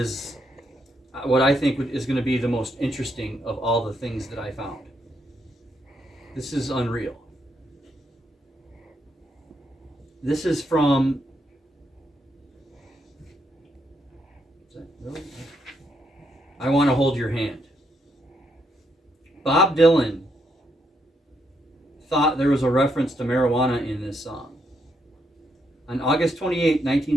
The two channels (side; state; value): both; normal; correlation 0.77